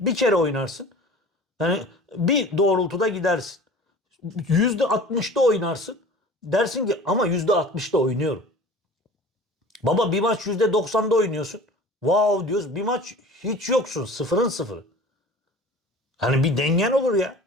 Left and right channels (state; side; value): normal; both; correlation 0.41